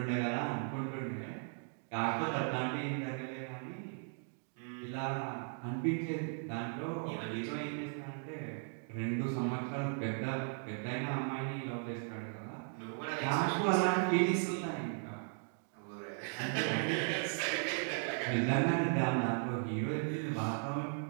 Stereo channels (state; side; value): silent; left; 53 dB below the other